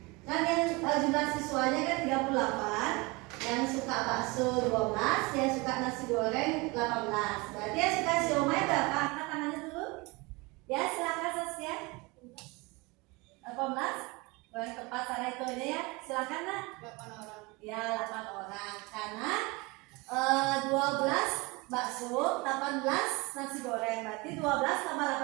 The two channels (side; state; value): left; quieter; 25.5 dB